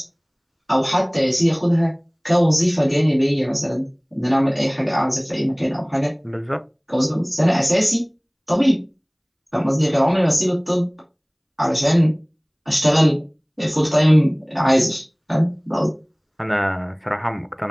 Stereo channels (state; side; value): identical; both; correlation 1.00